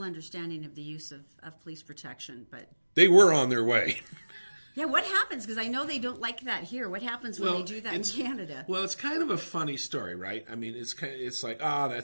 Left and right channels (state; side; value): inverted; both; correlation -1.00